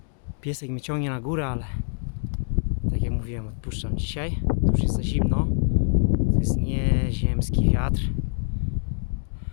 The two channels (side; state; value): right; silent; digital silence